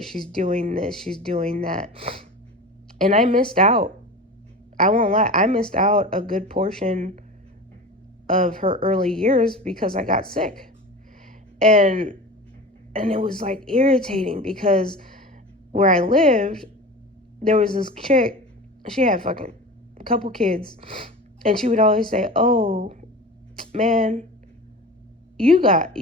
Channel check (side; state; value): both; normal; correlation 0.33